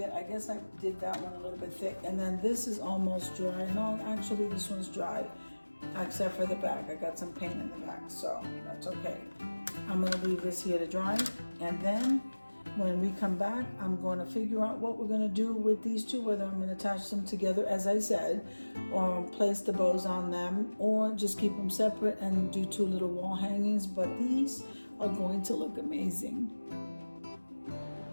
I guess I did that one a little bit thick. And then this is almost dry. No, actually this one's dry, except for the back. I got some paint in the back, so that's okay. I'm gonna leave this here to dry. And then when we come back, I'm going to figure out what we're gonna do with these two, whether I'm gonna attach them together, as I said, or place the bows on them, or just keep them separate and do two little wall hangings. But these are going to look amazing.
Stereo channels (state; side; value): inverted; both; correlation -1.00